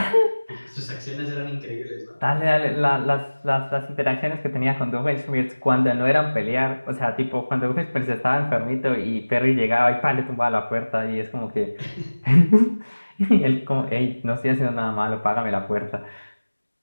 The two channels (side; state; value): both; inverted; correlation -1.00